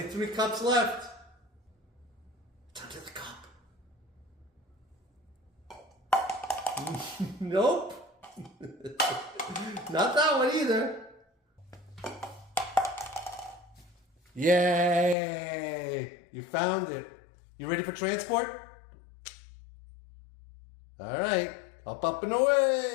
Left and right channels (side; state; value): right; drops out; at 15.2 s